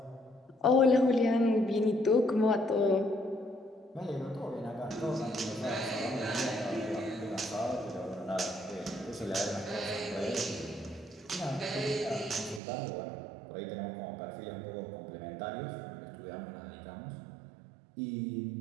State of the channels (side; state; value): left; drops out; at 12.6 s